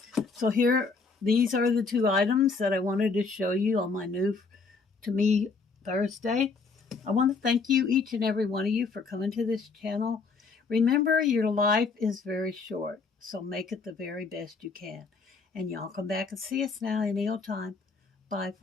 So here, these are the two items that I wanted to show you on my new To Me Thursday. I want to thank you, each and every one of you, for coming to this channel. Remember, your life is very short, so make it the very best you can. And y'all come back and see us now any old time. Bye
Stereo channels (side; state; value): right; quieter; 4.5 dB